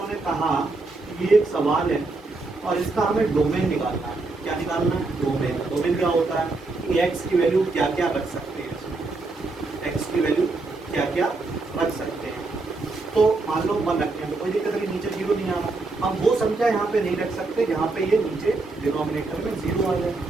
कहा कि ये एक सवाल है और इसका हमें डोमेन निकालना है। क्या निकालना है? डोमेन। डोमेन क्या होता है कि x की वैल्यू क्या क्या रख सकते हैं, x की वैल्यू क्या क्या रख सकते हैं। तो मान लो 1 रखते हैं तो कोई दिक्कत नहीं, नीचे 0 नहीं आ रहा। हम वो संख्या यहाँ पे नहीं रख सकते जहाँ पे ये नीचे डिनोमिनेटर में 0 आ जाए।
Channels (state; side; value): quieter; left; 3.5 dB